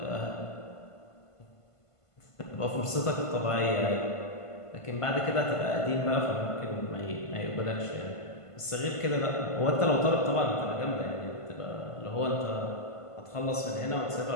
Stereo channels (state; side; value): late; right; 1.5 ms